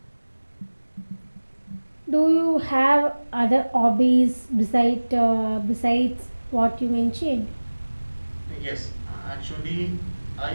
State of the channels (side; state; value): both; inverted; correlation -1.00